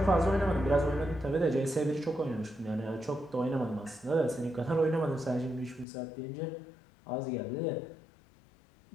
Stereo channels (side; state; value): right; drops out; at 5.9 s